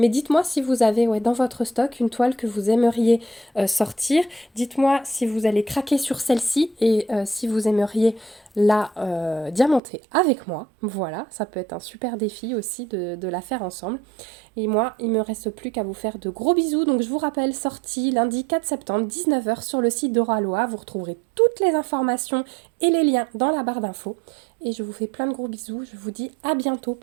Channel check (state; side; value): drops out; left; at 9.8 s